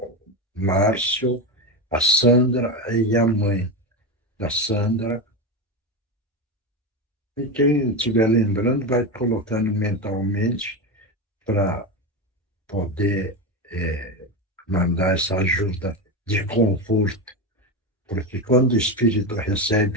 Márcio, a Sandra e a mãe da Sandra. E quem estiver lembrando vai colocando mentalmente para poder mandar essa ajuda de conforto, porque quando o espírito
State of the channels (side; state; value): both; normal; correlation 0.16